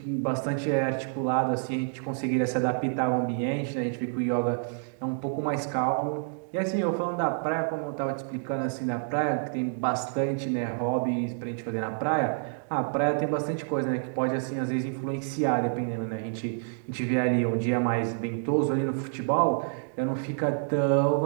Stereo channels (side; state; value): left; silent; digital silence